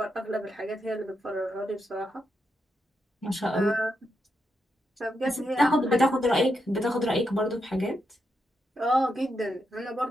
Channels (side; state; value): both; normal; correlation 0.84